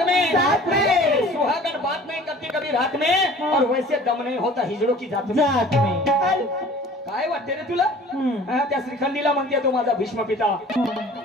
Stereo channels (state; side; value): normal; both; correlation 0.47